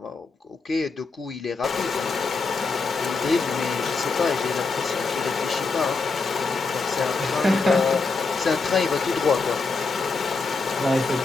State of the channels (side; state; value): right; quieter; 4.2 dB